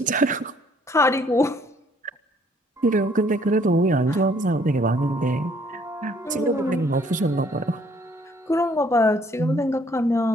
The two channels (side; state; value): both; normal; correlation 0.63